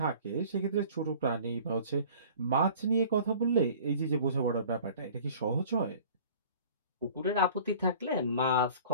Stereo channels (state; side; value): inverted; both; correlation -0.46